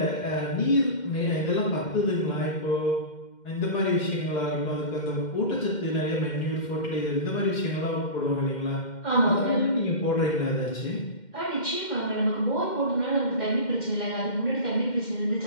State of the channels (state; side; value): late; right; 2.1 ms